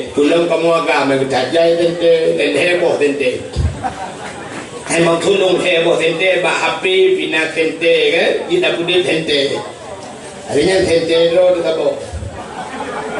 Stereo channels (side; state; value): both; identical; correlation 1.00